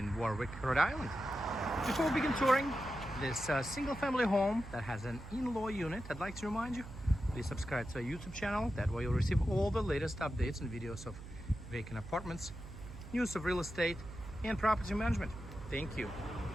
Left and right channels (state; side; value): noise; right; hum, 13 dB below the sound